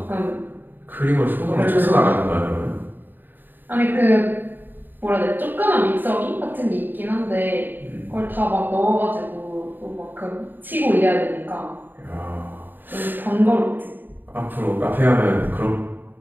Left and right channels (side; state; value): left; late; 0.091 ms